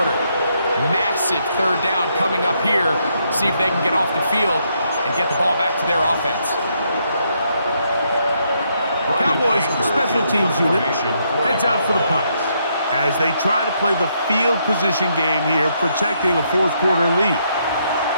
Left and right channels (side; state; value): both; inverted; correlation -0.75